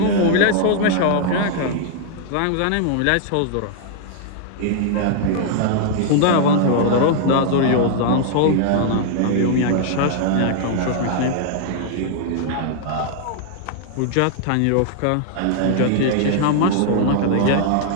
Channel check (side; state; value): both; different; correlation -0.01